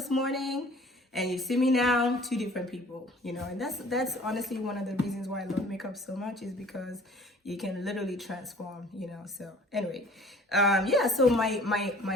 morning and you see me now, two different people, you know, and that's honestly one of the reasons why I love makeup so much, is because you can literally transform, you know. So anyway, yeah, so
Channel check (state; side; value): normal; both; correlation 0.51